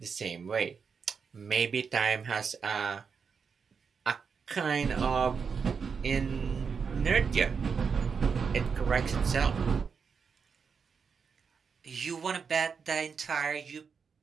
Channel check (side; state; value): left; quieter; 5.9 dB